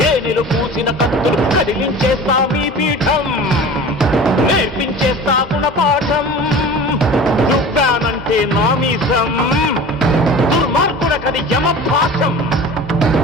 పూసిన కత్తులు, కదిలించేస్తా మీ పీఠం, నేర్పించేస్తా గుణపాఠం. దుబ్బానంటే నామీసం, దుర్మార్గుడకది యమపాఠం.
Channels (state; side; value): normal; both; correlation 0.38